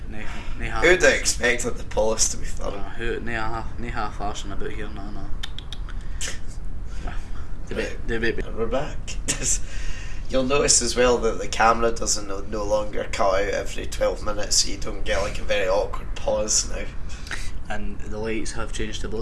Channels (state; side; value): identical; both; correlation 1.00